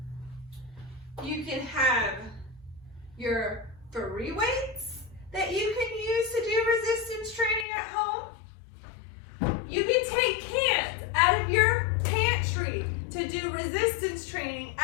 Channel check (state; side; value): drops out; right; at 7.7 s